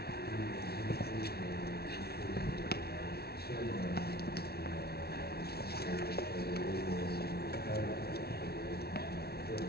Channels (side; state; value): right; late; 0.45 ms